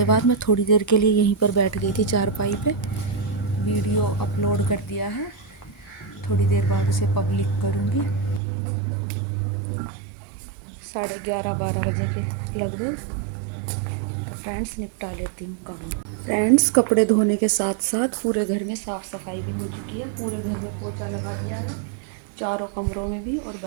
बाद मैं थोड़ी देर के लिए यहीं पर बैठ गई थी चारपाई पे। वीडियो अपलोड कर दिया है, थोड़ी देर बाद उसे पब्लिक करूँगी। 11:30-12 बजे के लगभग। फ्रेंड्स निपटा लेती हूँ काम। फ्रेंड्स कपड़े धोने के साथ साथ पूरे घर में साफ़ सफाई भी हो चुकी है। पूरे घर में पोछा लगा दिया है, चारों कमरों में भी और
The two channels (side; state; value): left; drops out; at 8.4 s